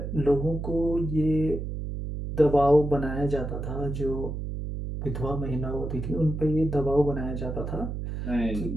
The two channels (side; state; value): right; noise; hum, 5 dB below the sound